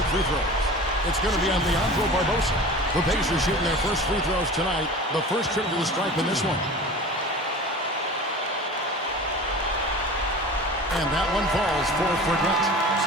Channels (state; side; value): normal; both; correlation 0.37